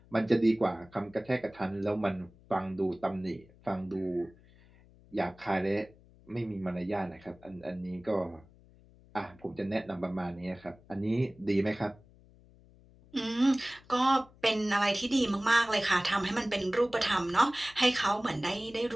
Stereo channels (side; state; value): left; noise; hum, 26 dB below the sound